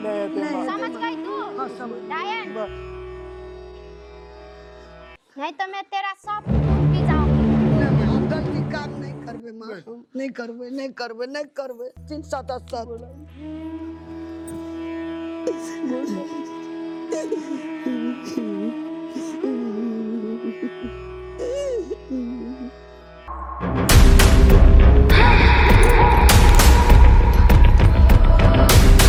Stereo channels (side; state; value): both; identical; correlation 1.00